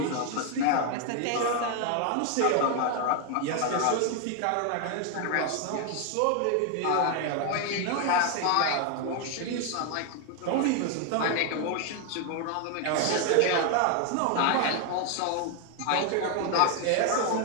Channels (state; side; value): different; both; correlation 0.01